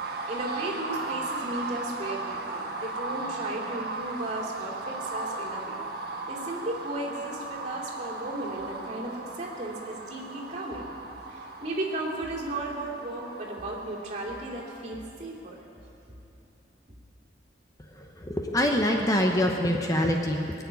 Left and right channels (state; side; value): normal; both; correlation 0.35